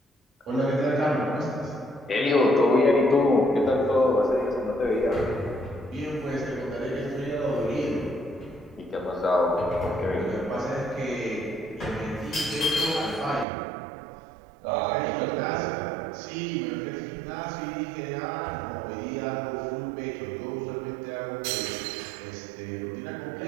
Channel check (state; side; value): drops out; left; at 13.5 s